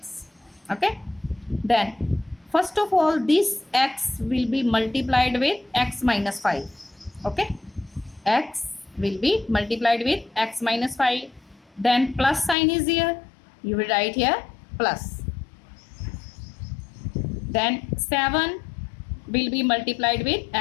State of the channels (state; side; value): drops out; right; at 12.6 s